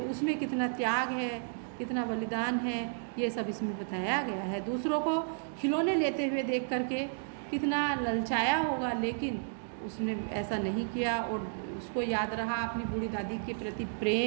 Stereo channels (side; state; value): left; silent; digital silence